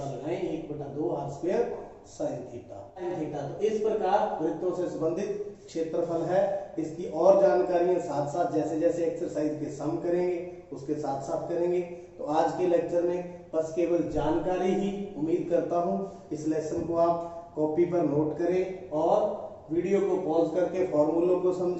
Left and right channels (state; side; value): identical; both; correlation 1.00